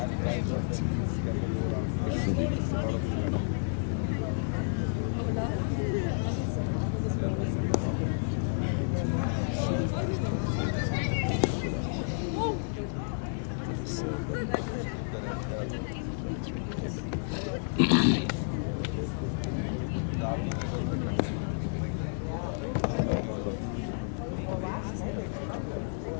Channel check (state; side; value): silent; right; digital silence